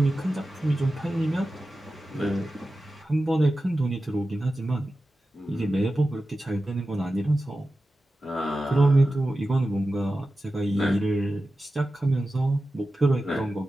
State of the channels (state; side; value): normal; both; correlation 0.93